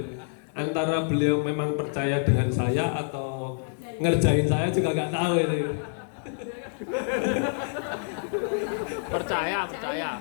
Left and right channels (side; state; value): right; silent; digital silence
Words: Antara beliau memang percaya dengan saya atau ngerjain saya juga nggak tahu ini. Percaya.